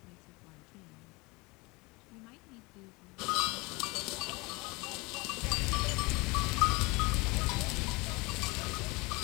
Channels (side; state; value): right; quieter; 25.5 dB